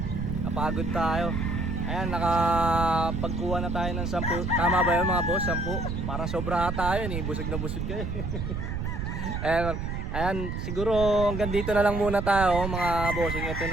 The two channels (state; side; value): noise; right; rumble, 3 dB below the sound